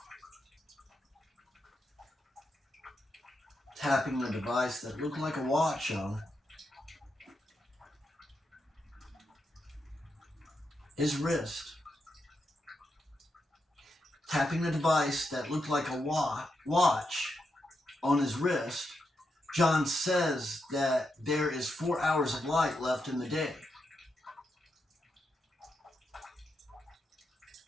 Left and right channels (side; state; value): both; normal; correlation 0.84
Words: Tapping the device that looked like a watch on his wrist. Tapping the device that looked like a watch on his wrist, John says that there is 4 hours of light left in the day.